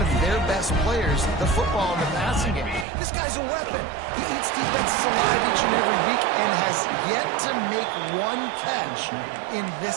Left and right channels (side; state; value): left; drops out; at 2.9 s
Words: of their best players the football in the passing game. This guy's a weapon. He eats defenses alive each and every week and has yet to make one catch in